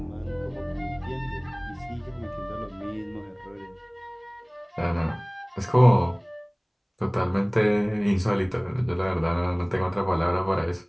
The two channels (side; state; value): both; identical; correlation 1.00